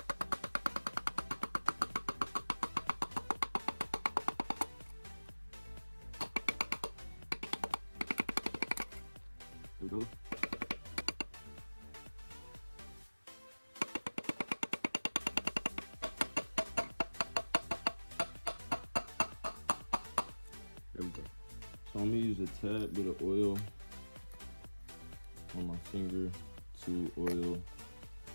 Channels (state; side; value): inverted; both; correlation -1.00